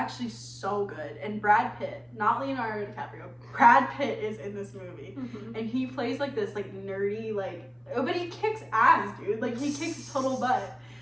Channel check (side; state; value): both; identical; correlation 1.00